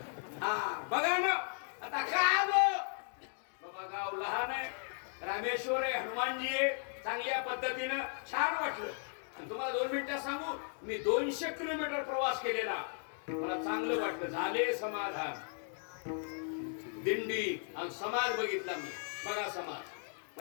हा बघा ना, आता काय बाबा गाव लहान आहे, रामेश्वर आहे, हनुमानजी आहे, चांगल्या पद्धतीनं छान वाटलं. आणि तुम्हाला 2 मिनिटं सांगू, मी 200 किलोमीटर प्रवास केलेला, मला चांगलं वाटलं. झाले समाधान. दिंडी आणि समाज बघितला मी. बघा समाज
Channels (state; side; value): silent; right; 54 dB below the other